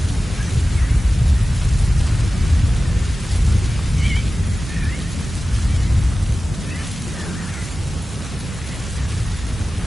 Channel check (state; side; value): normal; both; correlation 0.95